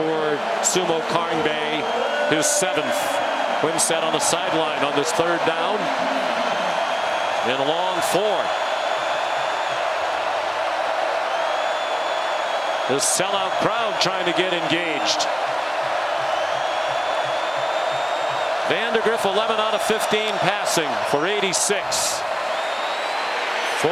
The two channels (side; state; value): both; identical; correlation 1.00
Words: Sumo Karngbae, his 7th. Wimsatt on the sideline on this 3rd down. And a long 4. The sellout crowd trying to get engaged. Vandegrift 11 out of 15 passing for 86.